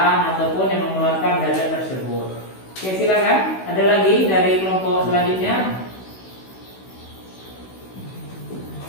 ataupun yang mengeluarkan zat tersebut. Oke, silakan. Ada lagi dari kelompok selanjutnya?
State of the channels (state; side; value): late; right; 16 ms